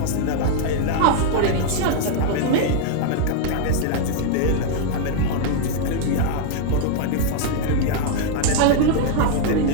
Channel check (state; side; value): different; both; correlation 0.00